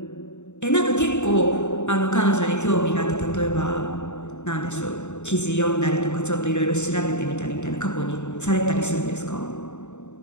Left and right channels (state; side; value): late; right; 0.83 ms